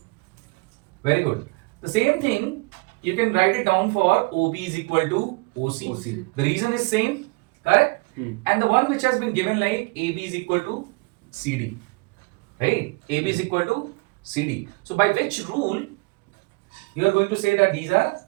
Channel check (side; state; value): left; quieter; 27.9 dB